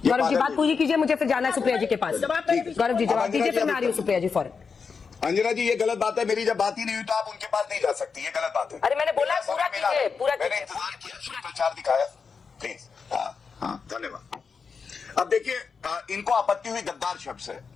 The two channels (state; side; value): quieter; right; 5.5 dB